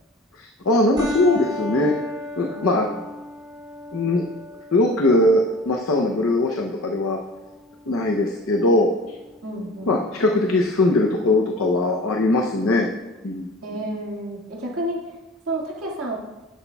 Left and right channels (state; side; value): normal; both; correlation 0.40